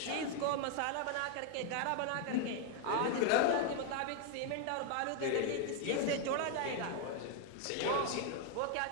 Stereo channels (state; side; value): different; both; correlation 0.00